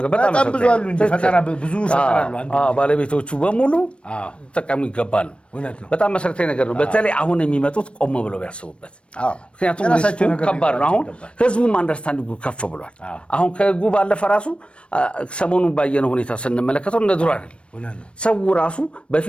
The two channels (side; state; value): right; late; 0.059 ms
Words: በጣም ብዙ አሉ እንጂ ፈጠራ ብዙ ፈጠራሉ ባለቤቶቹ በሙሉ ተጠቀሙ ይገባሉ። በጣም መሰረታዊ ነገር ነው። በተለይ አሁን የሚመጡት ቆም ብለው ቢያስቡበት። ምክንያቱም ሪስኩ ከባድ ነው። አሁን ህዝቡም አንደርስታንዲንጉ ከፍ ብሏል። አሁን ከህጉ ባለፈ ራሱ ሰሞኑን ባየነው ሁኔታ ስንመለከተው እንደ ድሮ አይደለም። ሰው ራሱ